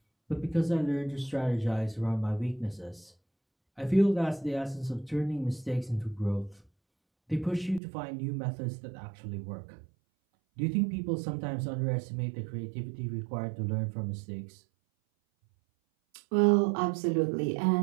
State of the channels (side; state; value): left; drops out; at 7.8 s